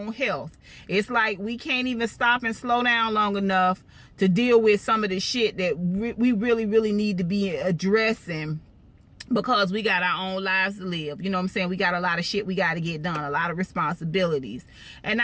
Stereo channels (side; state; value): both; identical; correlation 1.00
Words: health. It's like we can't even stop and slow down long enough to deal with some of the shit that we really, really need to be addressing, because we got our own lives to live. You know what I'm saying? We got a lot of shit we got to get done, a lot of responsibilities. And